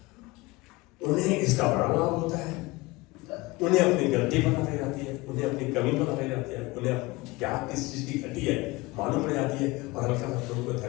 उन्हें इसका बड़ा लाभ होता है। उन्हें अपनी गलती पता लग जाती है, उन्हें अपनी कमी पता लग जाती है, उन्हें क्या किस चीज की घटी है मालूम पड़ जाती है, और हल्का प्रभु को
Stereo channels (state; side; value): quieter; right; 21.9 dB